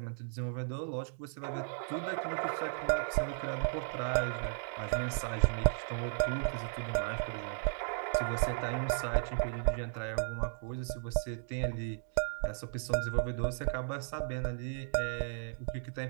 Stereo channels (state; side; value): silent; left; digital silence